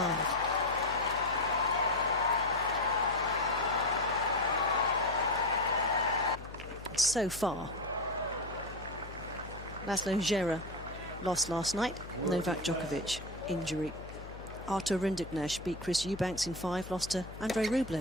so far. Laszlo Djere lost last night. Novak Djokovic, injury. Artur Rinderknecht beat Chris Eubanks in 5, lost to Andrei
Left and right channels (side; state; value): left; noise; hum, 14 dB below the sound